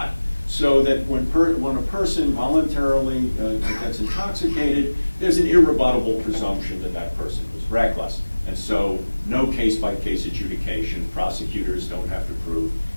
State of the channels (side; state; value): both; inverted; correlation -1.00